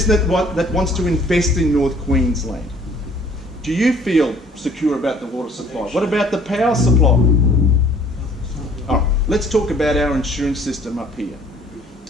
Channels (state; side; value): normal; both; correlation 0.56